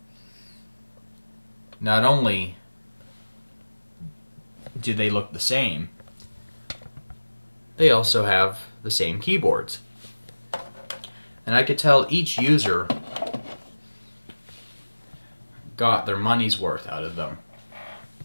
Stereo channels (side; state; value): both; inverted; correlation -1.00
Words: not only do they look the same, they also have the same keyboards. And I could tell each user got their money's worth out of them.